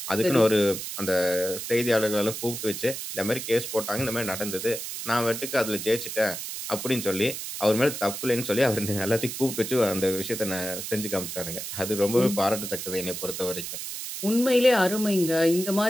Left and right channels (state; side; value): noise; right; hiss, 7 dB below the sound